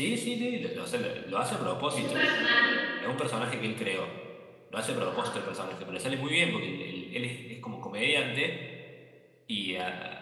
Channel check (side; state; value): both; identical; correlation 1.00